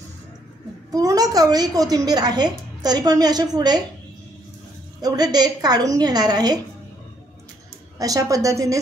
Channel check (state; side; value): normal; both; correlation 0.70